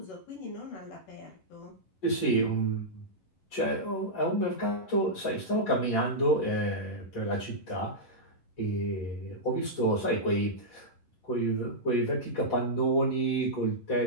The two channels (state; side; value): late; right; 11 ms